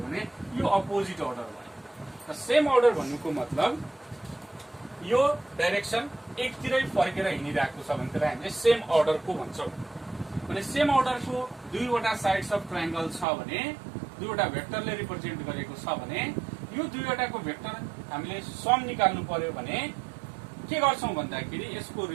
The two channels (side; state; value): left; drops out; at 13.2 s